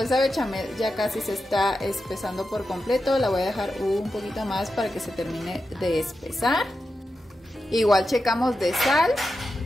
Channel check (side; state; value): both; normal; correlation 0.90